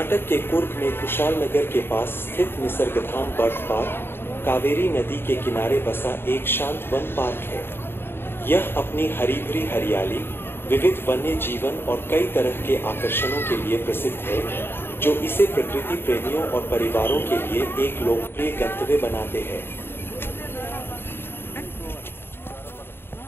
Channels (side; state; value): right; late; 0.11 ms